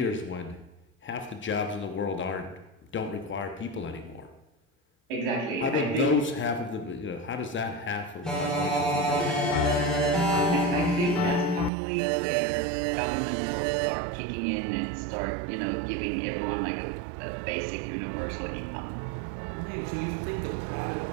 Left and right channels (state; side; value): drops out; left; at 11.7 s